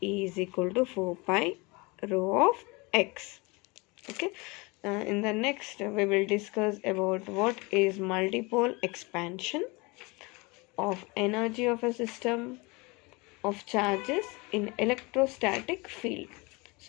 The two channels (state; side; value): quieter; right; 26.3 dB